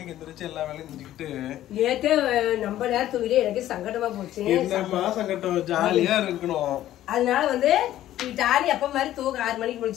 எந்திரிச்சு எல்லா வேலையும் செஞ்சுக்கிட்டு. நேத்தே நம்ம நேரம் தூங்கிட்டு எனக்கு சங்கடமா போச்சு. என்னமா சங்கடம், ஜாலியா இருக்கணும். அதனால வந்து டாலி அப்ப மாதிரி தூங்க 6 மணிக்கு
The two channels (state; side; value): quieter; right; 13.2 dB